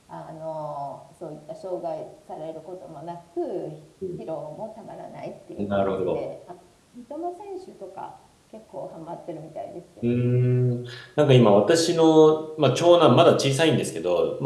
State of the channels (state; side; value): identical; both; correlation 1.00